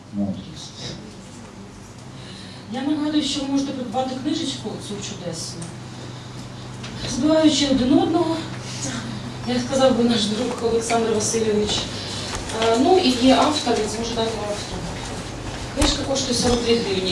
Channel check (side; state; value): both; identical; correlation 1.00